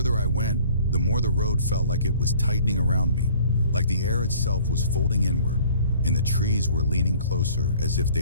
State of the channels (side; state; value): both; inverted; correlation -0.53